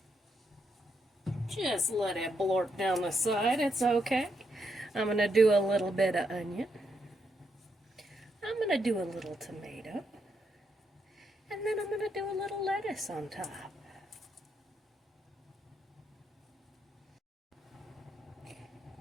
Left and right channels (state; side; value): normal; both; correlation 0.79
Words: Just let it blort down the side, it's okay. I'm going to do a little bit of onion. I'm going to do a little tomato. And then I'm going to do a little lettuce on top.